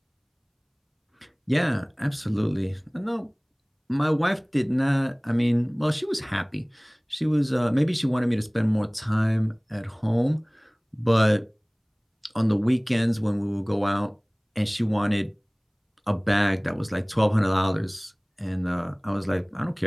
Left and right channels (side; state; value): both; identical; correlation 1.00